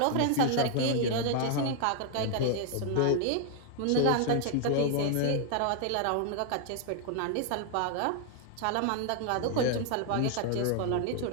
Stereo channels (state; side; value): different; both; correlation 0.00